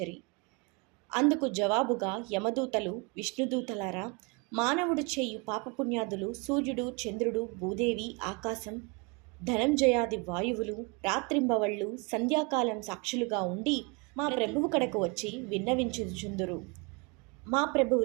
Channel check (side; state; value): left; quieter; 30.4 dB